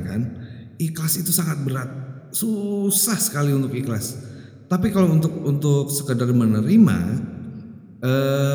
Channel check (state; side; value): identical; both; correlation 1.00